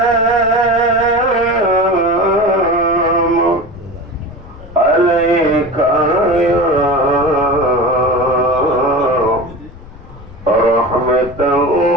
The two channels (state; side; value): noise; left; rumble, 19 dB below the sound